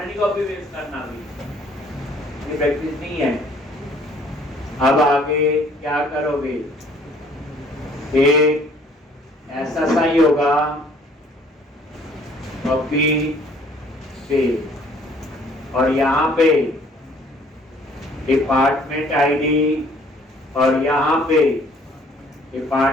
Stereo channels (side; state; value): both; normal; correlation 0.58